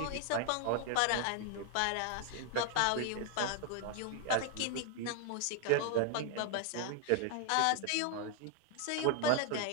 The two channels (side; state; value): both; different; correlation 0.00